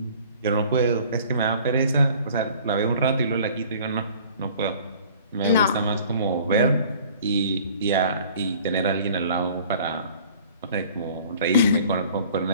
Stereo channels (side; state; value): both; inverted; correlation -0.50